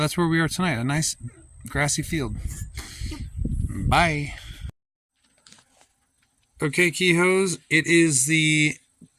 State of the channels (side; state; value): both; identical; correlation 1.00